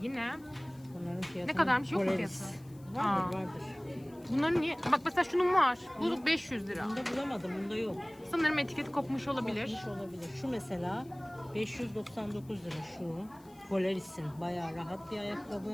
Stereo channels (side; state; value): left; noise; hiss, 27 dB below the sound